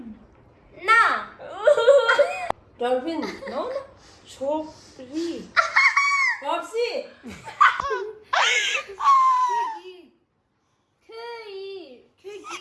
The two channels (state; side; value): identical; both; correlation 1.00